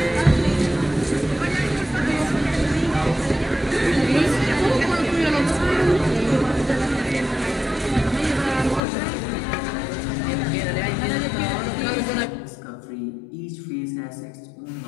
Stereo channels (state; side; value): drops out; right; at 8.8 s